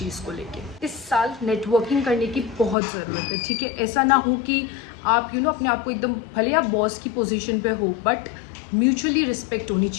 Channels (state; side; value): drops out; right; at 2.8 s